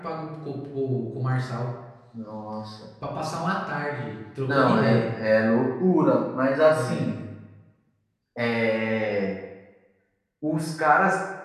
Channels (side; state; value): both; identical; correlation 1.00